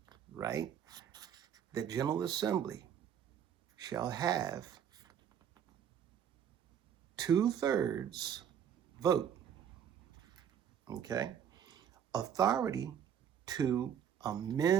right? The General Assembly shall have 2/3 vote, okay? Authority to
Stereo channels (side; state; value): left; quieter; 8.8 dB